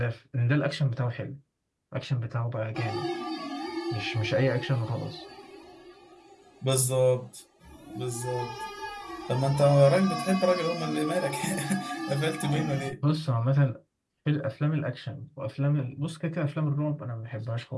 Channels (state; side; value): identical; both; correlation 1.00